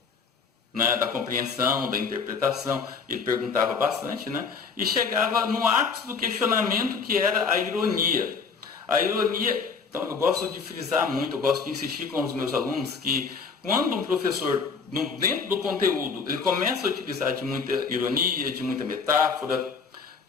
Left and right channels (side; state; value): right; quieter; 5.4 dB